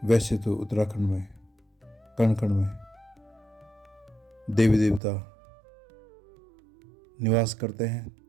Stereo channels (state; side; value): drops out; left; at 5.0 s